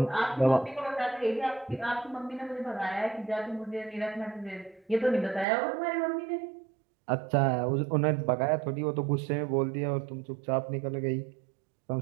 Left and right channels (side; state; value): left; drops out; at 5.5 s